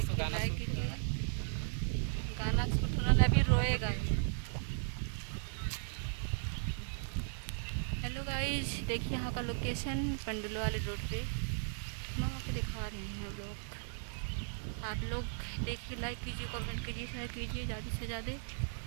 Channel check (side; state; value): left; silent; digital silence